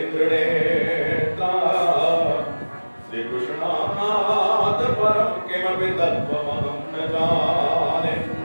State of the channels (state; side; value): inverted; both; correlation -1.00